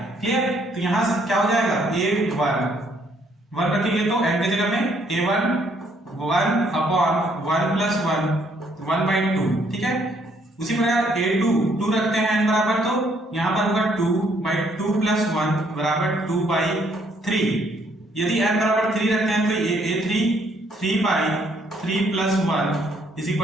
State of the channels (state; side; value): normal; both; correlation 0.68